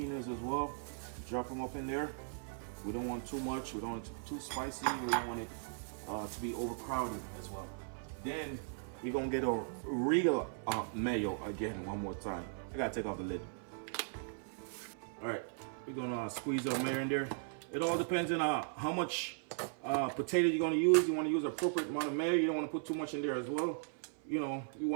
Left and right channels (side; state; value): left; silent; 53 dB below the other